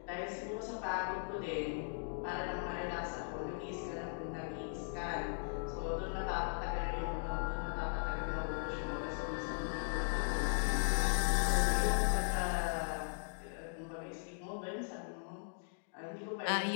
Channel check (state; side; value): silent; right; digital silence